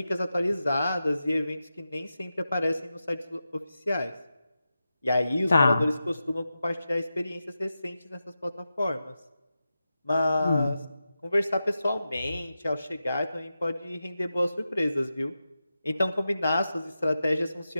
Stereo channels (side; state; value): both; inverted; correlation -0.91